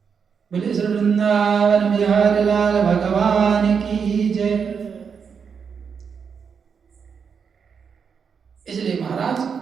बोले श्री वृंदावन बिहारी लाल भगवान की जय। इसलिए महाराज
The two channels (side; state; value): left; quieter; 6.4 dB